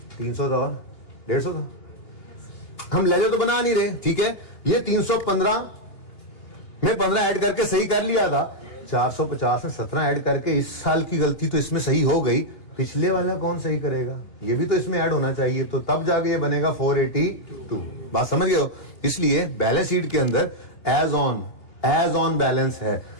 300 था और 150 था, हम लेजर तो बना नहीं रहे, ठीक है। ये 315 में 15 ऐड करके सही कर लिया था, 450 में 17 ऐड करके इस साल की गलती तो इसमें सही हो गई, पिछले वाला कौन सही करेगा? ये भी तो इसमें ऐड होना चाहिए, तो तब जाके ये बनेगा 482। बात समझ गए हो? इसलिए बैलेंस शीट के अंदर एज ऑन बैलेंस है,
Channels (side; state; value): right; late; 2.9 ms